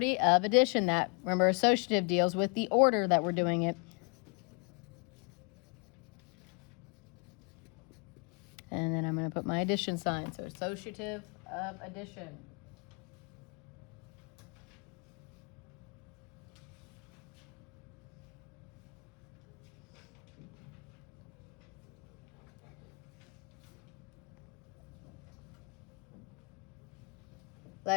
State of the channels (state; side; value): quieter; right; 34.9 dB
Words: of addition. That, remember, associative deals with the order that we're doing it. And then I'm going to put my addition sign. So associative of addition.